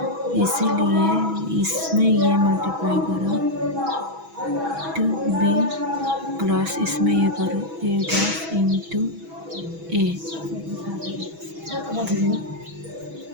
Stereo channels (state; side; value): late; left; 6.1 ms